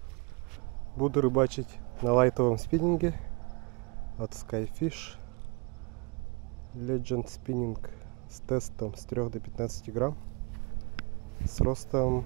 Буду рыбачить на лайтовом спиннинге от Skyfish Legend Spinning с тестом с 3 до 15 грамм. С ростом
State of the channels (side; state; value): left; quieter; 31.1 dB